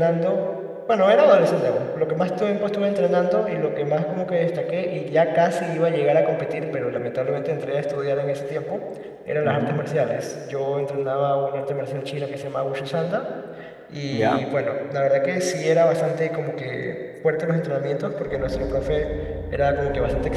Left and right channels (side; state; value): both; identical; correlation 1.00